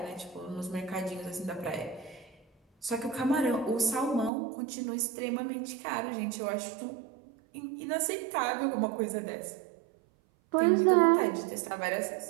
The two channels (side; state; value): left; drops out; at 4.3 s